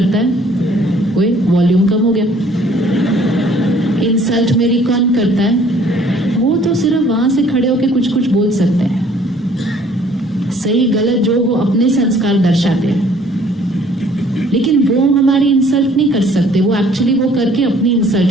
है। ओए वॉल्यूम कम हो गया। इंसल्ट मेरी कौन करता है। वो तो सिर्फ वहां से खड़े होके कुछ कुछ बोल सकते हैं, सही गलत जो वो अपने संस्कार दर्शाते हैं, लेकिन वो हमारी इंसल्ट नहीं कर सकते। वो एक्चुअली वो करके अपनी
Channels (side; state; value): both; normal; correlation 0.58